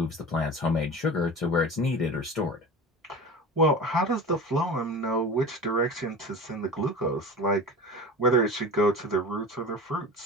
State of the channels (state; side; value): normal; both; correlation 0.33